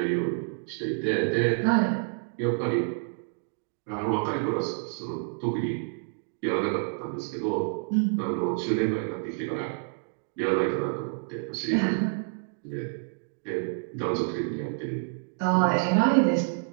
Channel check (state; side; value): silent; left; digital silence